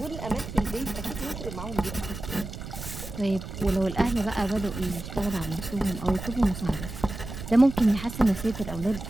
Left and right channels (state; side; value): noise; right; rumble, 9 dB below the sound